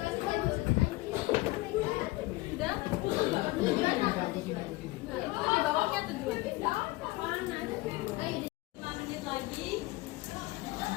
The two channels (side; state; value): right; quieter; 20.3 dB